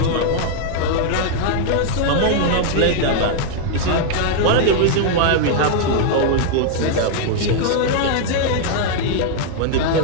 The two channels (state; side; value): different; both; correlation 0.00